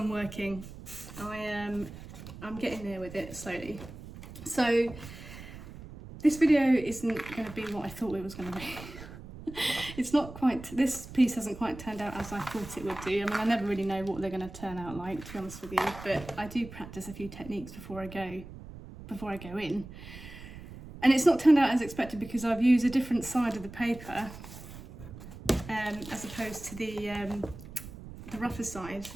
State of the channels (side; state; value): right; noise; rumble, 14 dB below the sound